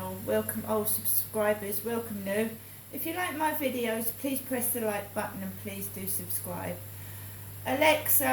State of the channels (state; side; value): identical; both; correlation 1.00